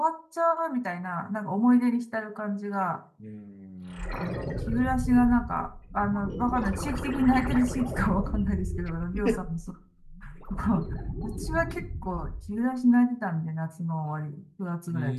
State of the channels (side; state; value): both; identical; correlation 1.00